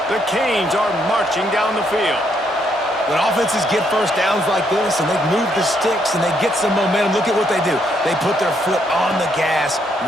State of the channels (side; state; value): both; normal; correlation 0.73